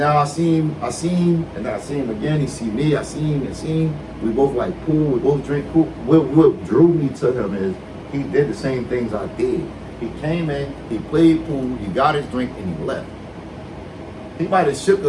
I see him, and then I see him again. He see me. I see him. We both like pool. We both drink pool. What drew me to him is he did the same things I did. He came in, he played pool, he got his drink, and he left. He might have shook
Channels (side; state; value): both; identical; correlation 1.00